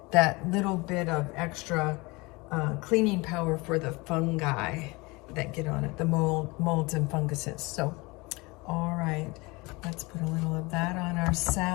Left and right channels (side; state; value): right; quieter; 24.7 dB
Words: that little bit of extra cleaning power for the fungi that get on it, the molds and funguses. So, all right, let's put a little of that on our